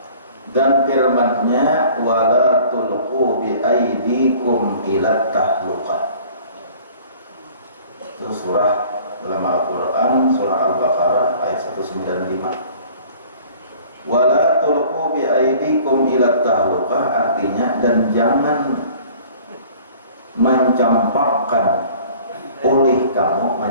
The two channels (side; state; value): both; inverted; correlation -0.49